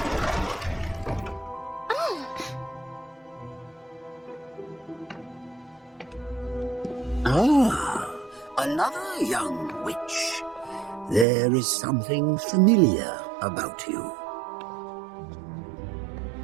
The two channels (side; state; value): left; drops out; at 11.2 s